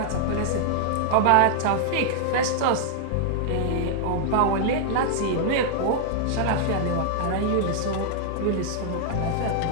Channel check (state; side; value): different; both; correlation -0.01